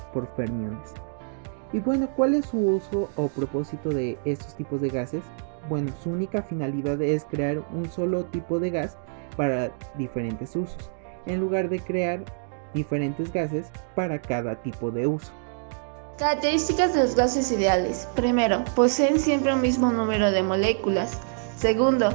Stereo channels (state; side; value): silent; left; digital silence